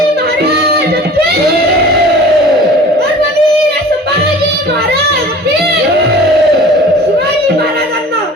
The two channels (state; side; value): normal; both; correlation 0.43